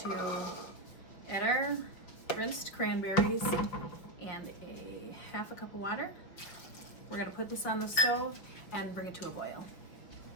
add our rinsed cranberries and a half a cup of water. We're gonna put this on the stove and bring it to a boil.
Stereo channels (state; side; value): late; right; 5.4 ms